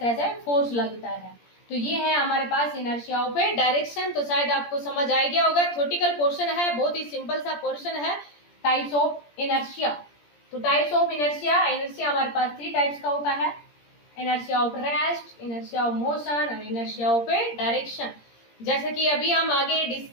से फोर्स लगता है। तो ये है हमारे पास इनर्शिया ऑफ ए डायरेक्शन। तो शायद आपको समझ आ गया होगा, थ्योरेटिकल पोर्शन है, बहुत ही सिंपल सा पोर्शन है, टाइप्स ऑफ इनर्शिया। तो टाइप्स ऑफ इनर्शिया, इनर्शिया हमारे पास 3 टाइप्स का होता है, inertia of rest, inertia of motion और इनर्शिया ऑफ ए डायरेक्शन। जैसे कि अभी हम आगे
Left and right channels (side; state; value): right; late; 17 ms